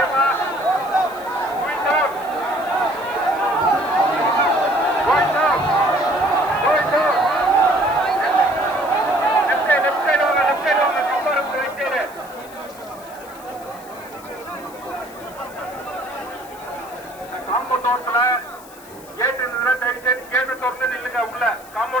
காம்பவுண்ட்ல கேட் இருந்ததுன்னா தயவு செய்து கேட்டு திறந்து நில்லுங்க. உள்ள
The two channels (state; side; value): noise; left; hiss, 21 dB below the sound